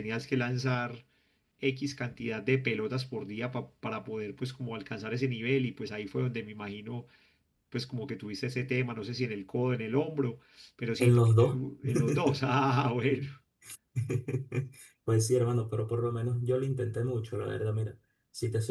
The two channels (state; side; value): identical; both; correlation 1.00